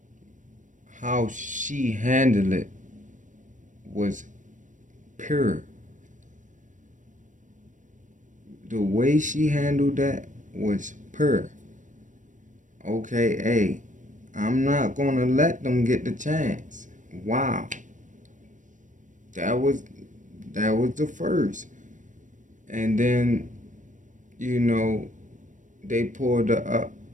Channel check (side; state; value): left; late; 0.37 ms